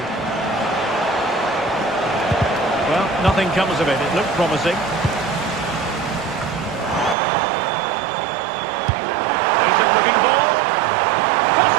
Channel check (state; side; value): drops out; left; at 7.2 s